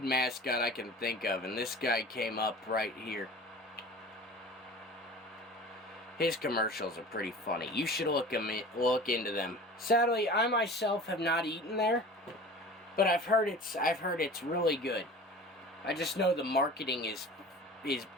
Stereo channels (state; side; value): normal; both; correlation 0.39